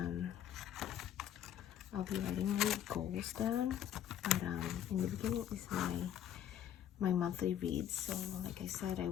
I'll be writing my goals down, but in the beginning is my monthly reads. So like I said, I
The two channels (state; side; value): quieter; right; 10.3 dB